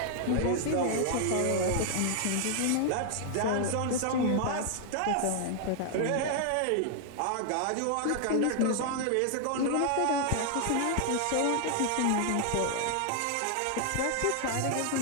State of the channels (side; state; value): both; different; correlation 0.00